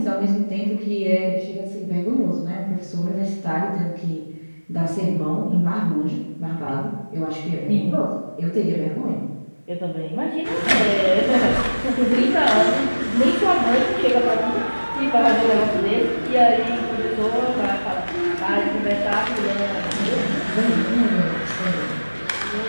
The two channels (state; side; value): inverted; both; correlation -1.00